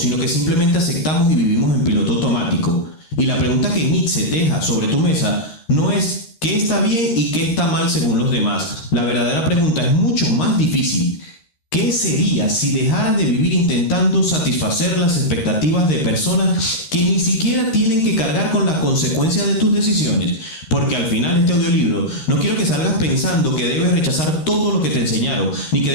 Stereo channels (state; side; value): late; right; 13 ms